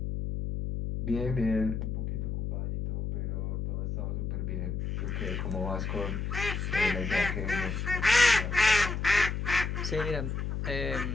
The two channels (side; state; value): left; noise; hum, 2 dB below the sound